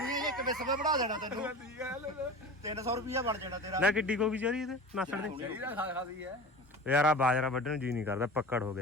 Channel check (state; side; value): normal; both; correlation 0.34